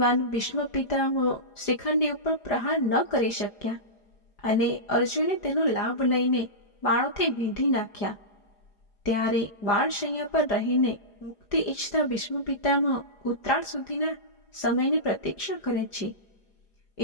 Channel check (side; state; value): right; late; 4.9 ms